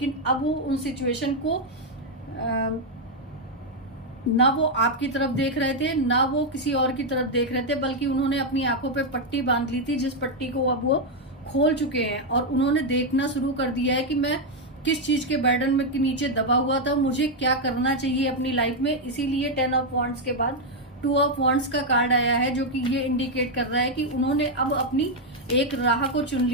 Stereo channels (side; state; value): both; normal; correlation 0.01